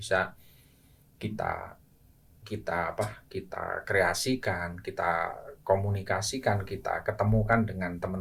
kita kreasikan, kita komunikasikan, kita ketemukan dengan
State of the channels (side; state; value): both; identical; correlation 1.00